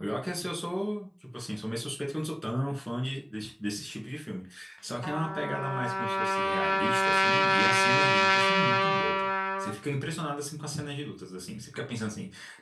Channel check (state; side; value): identical; both; correlation 1.00